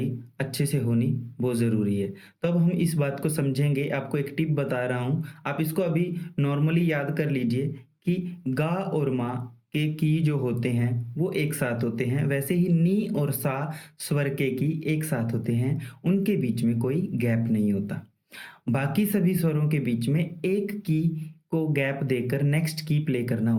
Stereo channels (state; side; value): identical; both; correlation 1.00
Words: अच्छे से होनी बहुत ज़रूरी है। तो अब हम इस बात को समझेंगे। आपको एक टिप बता रहा हूँ, आप इसको अभी नॉर्मली याद कर लीजिए कि गा और मा के की जो होते हैं वो एक साथ होते हैं, वैसे ही नी और सा स्वर के की एक साथ होते हैं, उनके बीच में कोई गैप नहीं होता। बाकी सभी स्वरों के बीच में एक की को गैप देकर नेक्स्ट की प्ले करना